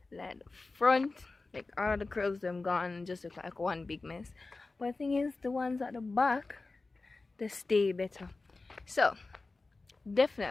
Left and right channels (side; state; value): right; quieter; 3.6 dB